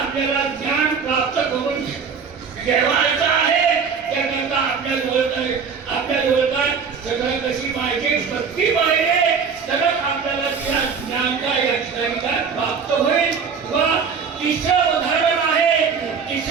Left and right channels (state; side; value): quieter; left; 5.9 dB